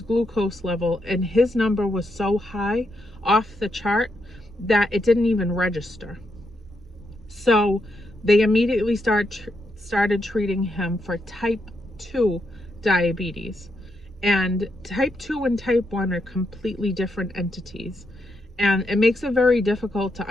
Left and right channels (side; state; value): both; normal; correlation 0.81